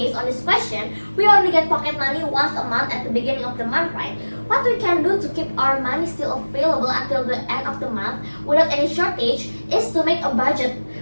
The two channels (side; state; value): both; inverted; correlation -1.00